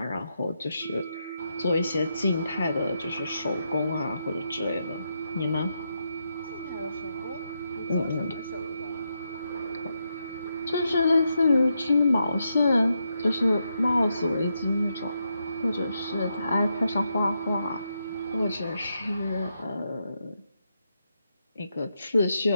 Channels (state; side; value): inverted; both; correlation -0.83